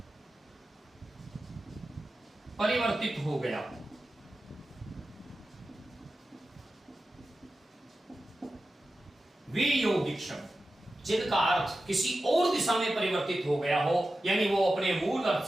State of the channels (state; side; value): normal; both; correlation 0.93